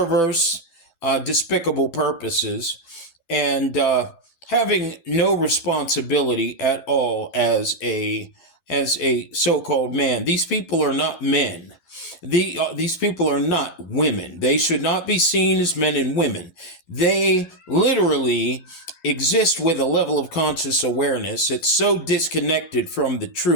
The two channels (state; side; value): late; right; 11 ms